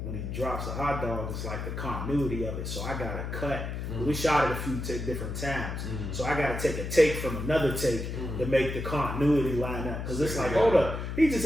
drops the hot dog, it's like the continuity of it. So I gotta cut. We shot it a few different times. So I gotta take a take from another take to make the continuity line up. Because it's like, hold up, he just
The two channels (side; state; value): left; noise; hum, 5 dB below the sound